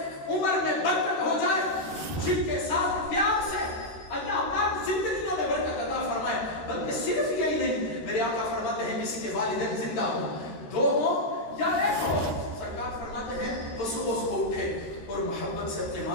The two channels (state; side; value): late; right; 13 ms